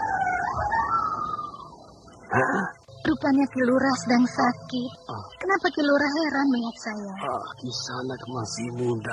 Rupanya Kilura sedang sakit. Kenapa Kilura heran melihat saya? Kisanak masih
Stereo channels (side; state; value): both; identical; correlation 1.00